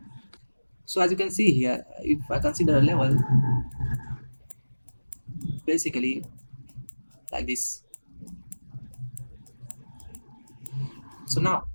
So as you can see here, if I consider a level, basically like this. So now,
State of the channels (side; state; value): both; inverted; correlation -1.00